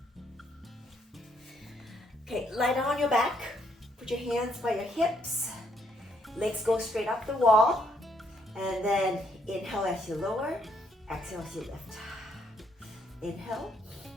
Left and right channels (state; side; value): normal; both; correlation 0.71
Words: Okay, lie down on your back. Put your hands by your hips. Legs go straight up the wall. And then inhale as you lower. Exhale as you lift. Inhale